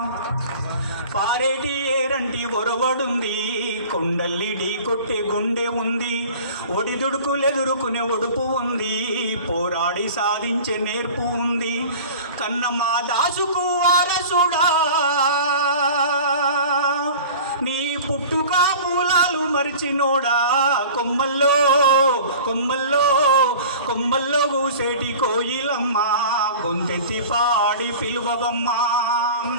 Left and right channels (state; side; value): inverted; both; correlation -0.40